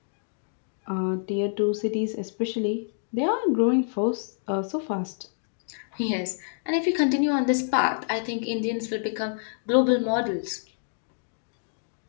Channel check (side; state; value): right; silent; digital silence